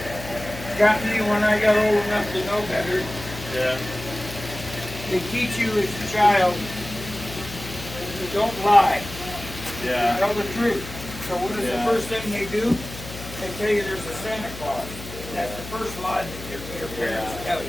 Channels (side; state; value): left; noise; hum, 12 dB below the sound